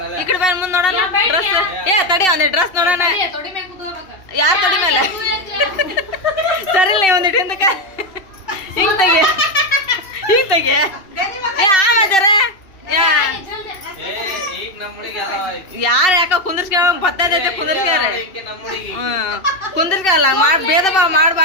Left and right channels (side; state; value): right; late; 2.7 ms